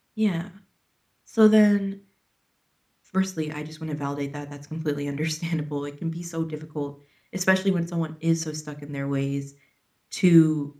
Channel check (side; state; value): both; identical; correlation 1.00